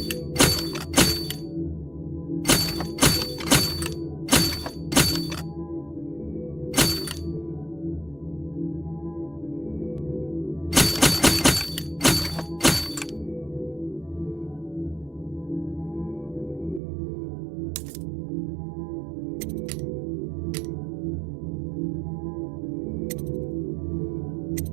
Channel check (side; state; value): left; drops out; at 16.8 s